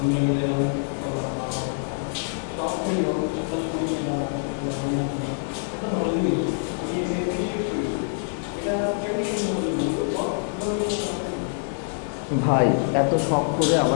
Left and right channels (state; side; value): silent; right; 62 dB below the other